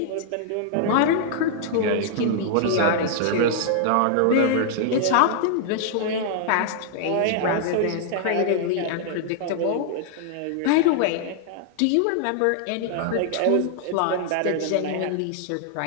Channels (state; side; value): different; both; correlation -0.01